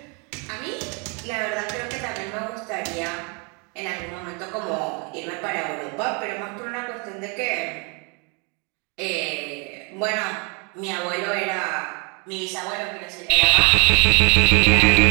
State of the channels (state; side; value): quieter; left; 33.8 dB